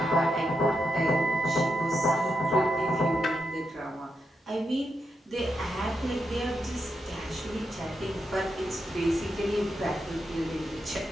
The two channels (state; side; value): normal; both; correlation 0.84